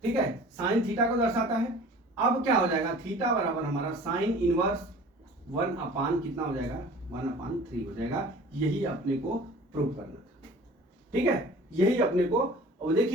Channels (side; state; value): both; normal; correlation 0.45